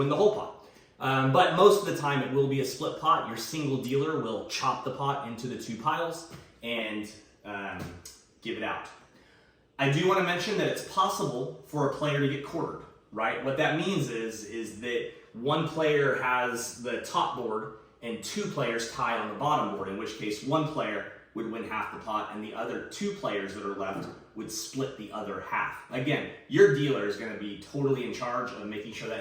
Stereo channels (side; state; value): both; identical; correlation 1.00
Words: the whole pot. But most of the time it will be a split pot. Your single dealer will chop the pot into the 2 piles and give it out. I do want to mention that it's possible for a player to get quartered, right? What that means is that one player has the top board and 2 players tied on the bottom board, in which case one player would win half the pot and the other 2 players that are left would split the other half. Again, your dealer is going to be totally in charge of making sure that